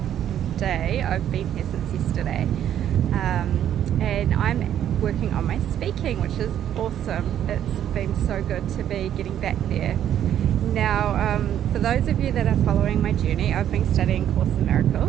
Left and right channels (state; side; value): quieter; left; 10.5 dB